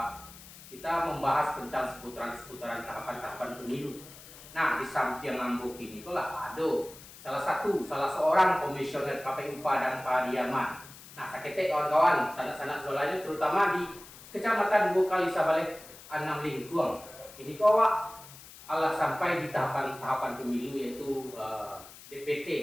kita membahas tentang seputaran tahapan-tahapan pemilu. Nah, di samping ngambuk ini lah ada salah seorang komisioner KPU Padang Pariaman. Nah, sakete kawan-kawan, sanak-sanak saudaranya terutama di Kecamatan Bukali Sabale Anam Lingkuang. Ini kawak Allah sampai di tahapan pemilu yaitu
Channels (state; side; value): noise; left; hiss, 18 dB below the sound